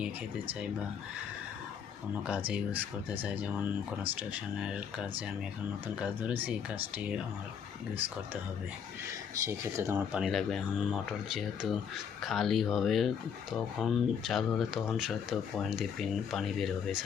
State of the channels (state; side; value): quieter; right; 7.4 dB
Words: খেতে চাই বা কোনো কাজে ইউজ করতে চাই, যেমন কনস্ট্রাকশনের কাজে আমি এখন নতুন কাজ ধরেছি, এই কাজটি আমার ইউজ করতে হবে, সেই ক্ষেত্রে তো আমার পানি লাগবে। এখন মোটর যেহেতু খালি হবে তখন চালু হলে তখন হয়তো পয়েন্ট দিয়ে পানি বের হবে,